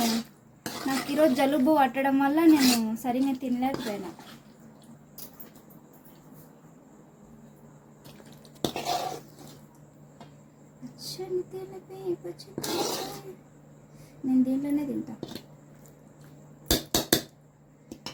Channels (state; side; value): identical; both; correlation 1.00